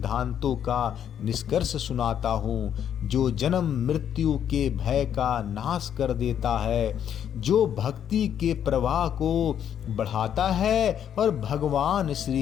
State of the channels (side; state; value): right; quieter; 9.3 dB